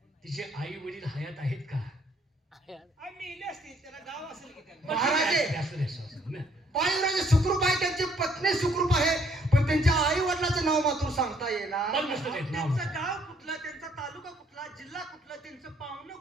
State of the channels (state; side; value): normal; both; correlation 0.66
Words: तिचे आई वडील हयात आहेत का? मेले असतील, त्याला गाव असेल की त्यांना. महाराजे, असू दे, असू दे. बाळयुवराज सुखरूप आहे, त्यांची पत्नी सुखरूप आहे, पण त्यांच्या आई वडिलाचं नाव मात्र सांगता येणार. पण नसतं देत नाव. त्यांचं गाव कुठलं, त्यांचा तालुका कुठला, जिल्हा कुठला, त्यांचं पाहुणं